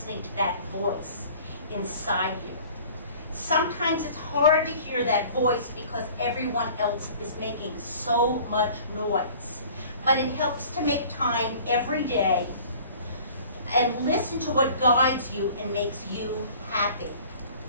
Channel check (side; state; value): both; inverted; correlation -0.48